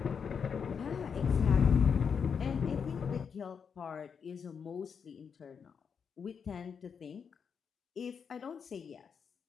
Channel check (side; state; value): right; quieter; 6.5 dB